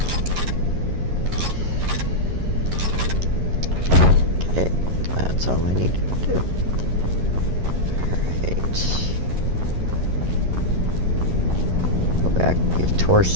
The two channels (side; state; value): left; late; 11 ms